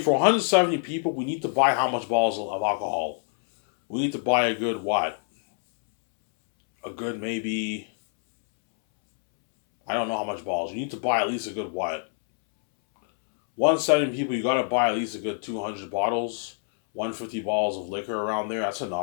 for 170 people, we need to buy how much bottles of alcohol? We need to buy a good what? A good maybe, I don't know how much bottles. You need to buy at least a good what? 170 people, you gotta buy at least a good 200 bottles, 150 bottles of liquor around there. That's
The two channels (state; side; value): silent; right; 61 dB below the other